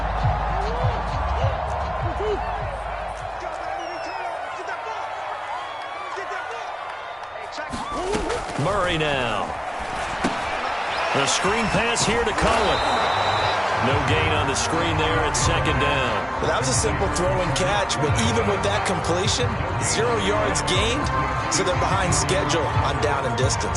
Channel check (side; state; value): both; identical; correlation 1.00